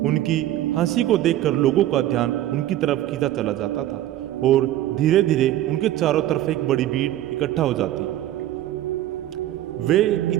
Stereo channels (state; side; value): quieter; left; 13.6 dB